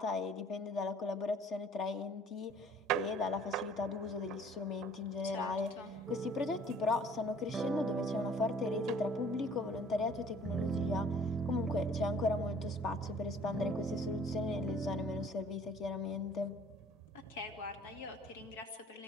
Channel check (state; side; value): normal; both; correlation 0.54